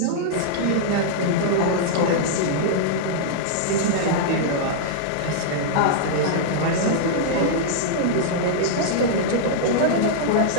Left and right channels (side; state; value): both; different; correlation -0.02